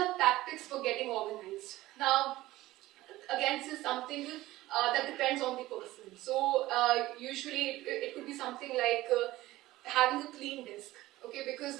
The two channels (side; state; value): left; quieter; 17.0 dB